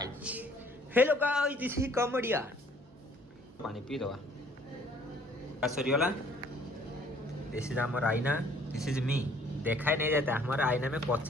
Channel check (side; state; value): both; normal; correlation 0.58